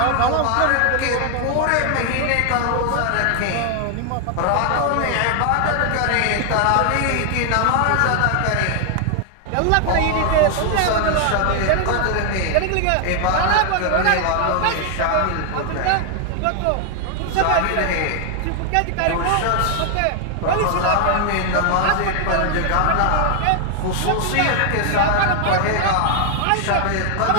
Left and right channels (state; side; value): different; both; correlation 0.00